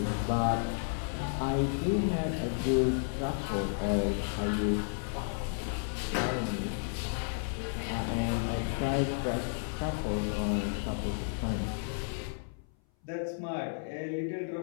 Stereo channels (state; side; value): silent; right; 56 dB below the other